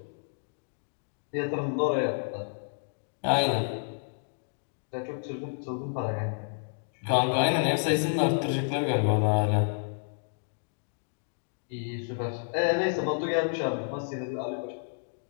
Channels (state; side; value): silent; right; digital silence